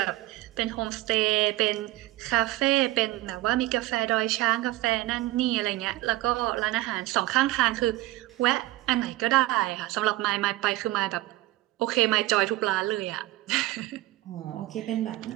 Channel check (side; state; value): left; quieter; 17.3 dB